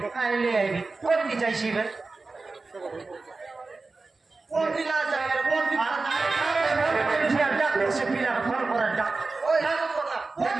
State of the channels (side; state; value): left; quieter; 3.8 dB